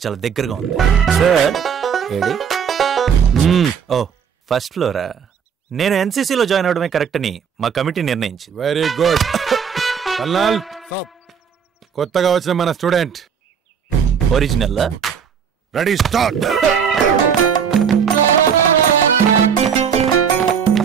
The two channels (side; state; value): left; quieter; 7.3 dB